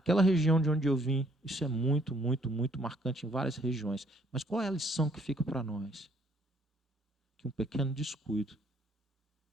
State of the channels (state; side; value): normal; both; correlation 0.66